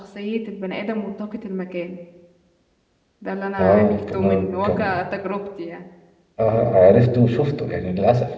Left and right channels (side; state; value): both; identical; correlation 1.00